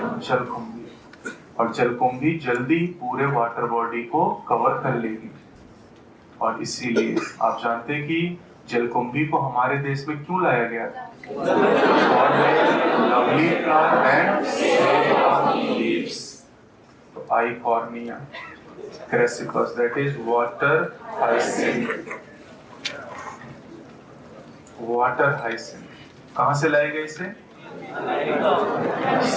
जलकुंभी। और जलकुंभी जल्दी पूरे वाटर बॉडी को कवर कर लेगी। और इसीलिए आप जानते हैं कि जलकुंभी को हमारे देश में क्यों लाया गया था? Lovely flower and leaves. तो Eichhornia crassipes, that is water hyacinth. Water hyacinth कहां से लाया गया इसे?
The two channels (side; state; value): both; identical; correlation 1.00